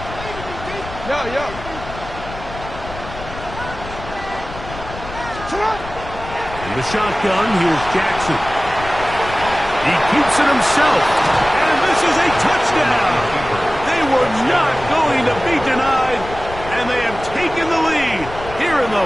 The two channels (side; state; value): left; noise; rumble, 12 dB below the sound